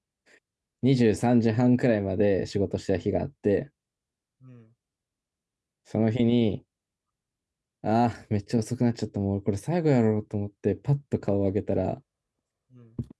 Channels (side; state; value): both; identical; correlation 1.00